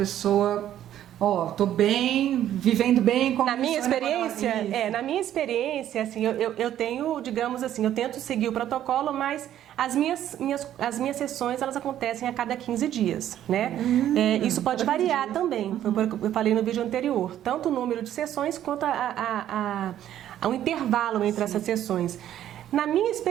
tô bem, vivendo bem. Na minha experiência, assim, eu tenho, digamos assim, eu tento seguir o protocolo, mas as minhas sessões, elas acontecem a cada 15 dias, né? Isso pode variar também, foi o que eu falei no vídeo anterior, tanto o número de sessões quanto o intervalo entre essas sessões. Na minha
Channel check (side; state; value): left; quieter; 11.5 dB